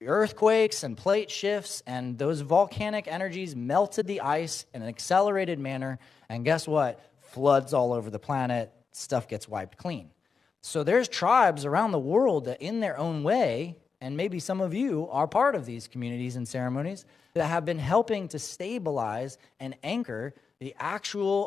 earthquakes and plate shifts, and those volcanic energies melted the ice in an accelerated manner, and guess what? Floods all over the planet, stuff gets wiped clean. So there's tribes around the world that in their own way, and maybe some of you are part of these communities and ceremonies, that have been helping to stabilize and anchor the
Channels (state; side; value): quieter; right; 5.3 dB